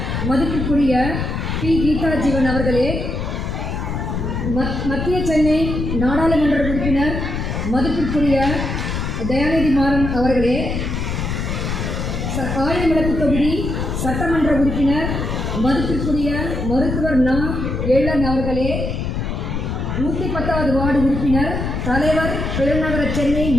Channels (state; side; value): noise; left; rumble, 3 dB below the sound